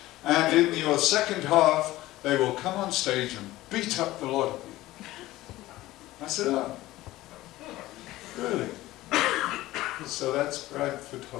and in your second half they will come on stage and beat up the lot of you. I said, oh, really? So that's Bradford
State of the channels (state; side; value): quieter; right; 17.0 dB